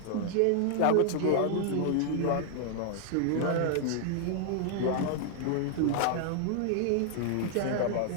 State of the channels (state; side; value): different; both; correlation -0.01